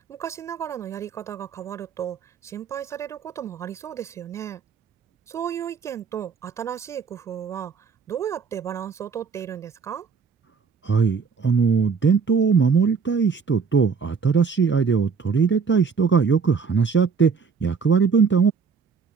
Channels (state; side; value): quieter; left; 5.7 dB